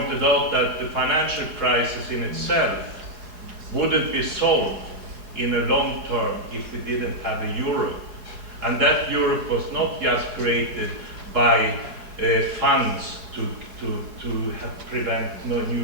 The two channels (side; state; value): left; late; 4.8 ms